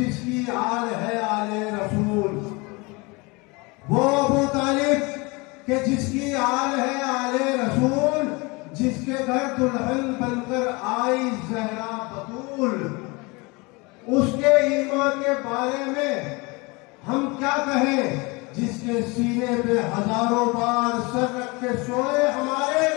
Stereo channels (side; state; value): right; quieter; 26.5 dB